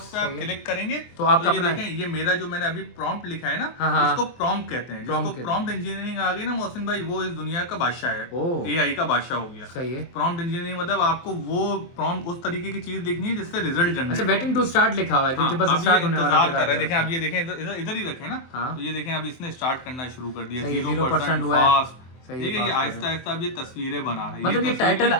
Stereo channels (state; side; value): late; right; 23 ms